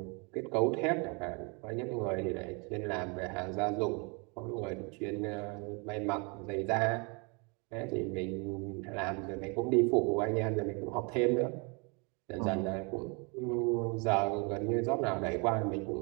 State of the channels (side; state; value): left; quieter; 31.9 dB